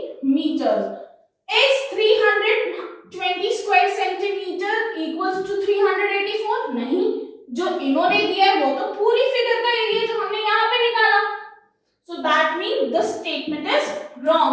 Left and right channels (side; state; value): both; identical; correlation 1.00